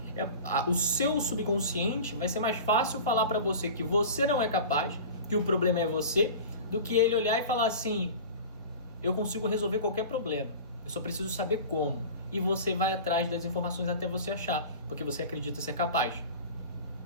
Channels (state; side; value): inverted; both; correlation -0.36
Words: o seu subconsciente vai ser mais fácil falar para você que você não é capaz, que o problema é você, do que ele olhar e falar assim: eu consigo resolver qualquer problema, eu só preciso saber como. E você vai atrás das informações até você achar, porque você acredita ser capaz.